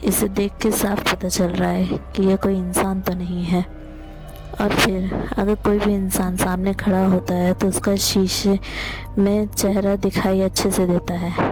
इसे देख के साफ पता चल रहा है कि यह कोई इंसान तो नहीं है। और फिर अगर कोई भी इंसान सामने खड़ा होता है तो उसका शीशे में चेहरा दिखाई अच्छे से देता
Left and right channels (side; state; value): both; identical; correlation 1.00